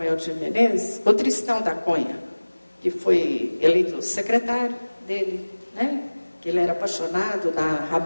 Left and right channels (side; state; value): both; inverted; correlation -1.00